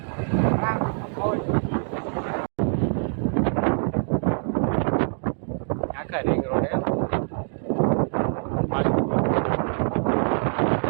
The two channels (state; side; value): silent; left; 60 dB below the other